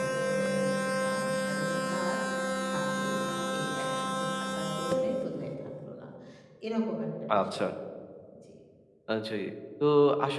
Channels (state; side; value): identical; both; correlation 1.00